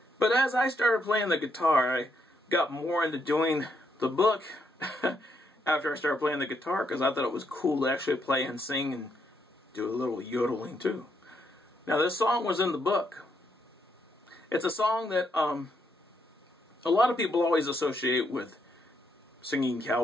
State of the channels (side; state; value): both; normal; correlation 0.76